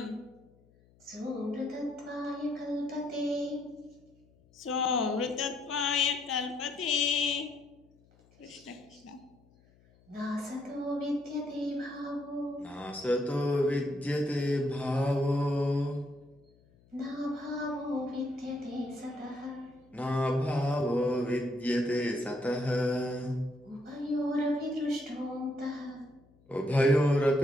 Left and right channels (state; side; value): noise; left; hum, 30 dB below the sound